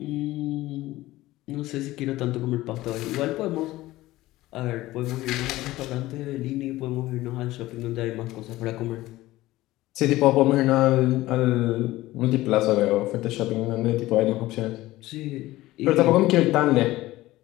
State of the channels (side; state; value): right; quieter; 17.2 dB